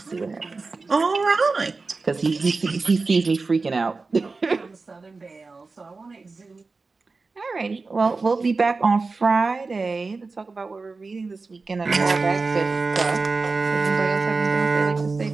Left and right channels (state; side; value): quieter; left; 4.0 dB